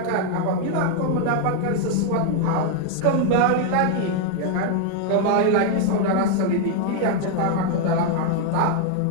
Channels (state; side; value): different; both; correlation 0.00